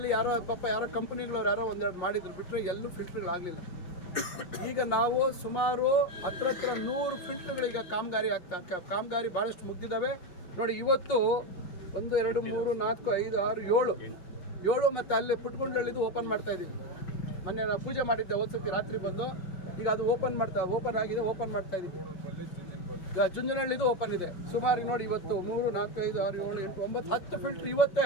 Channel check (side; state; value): right; late; 5.6 ms